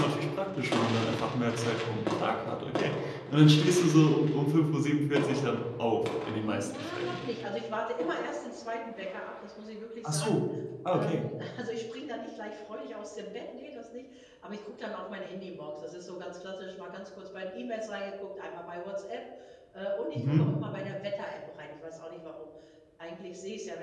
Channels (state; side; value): identical; both; correlation 1.00